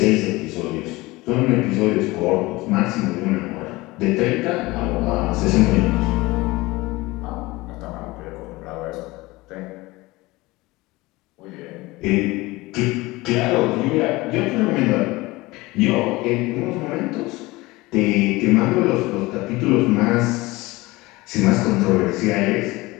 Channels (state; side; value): quieter; right; 21.1 dB